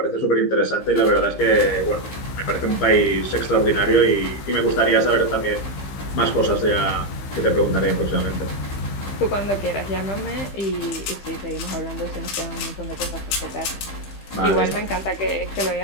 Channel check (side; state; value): right; late; 15 ms